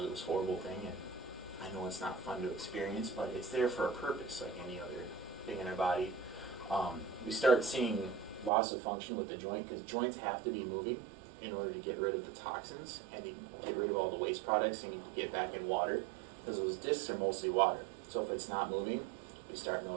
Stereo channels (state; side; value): drops out; left; at 8.5 s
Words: this horrible thing, and I know it's not fun to experience, but it's there for a purpose, like any other thing in our body. We start seeing loss of function with the joint, because joints have to be moving in order to get rid of the toxins and to get rid of all the waste products and to get back in water, because those discs are mostly water. So if it's not moving, we start